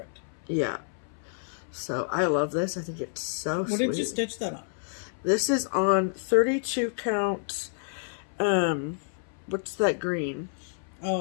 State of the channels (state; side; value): silent; right; 59 dB below the other